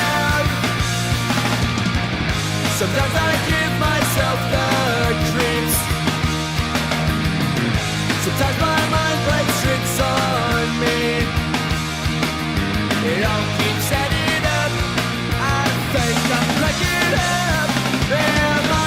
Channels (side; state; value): both; identical; correlation 1.00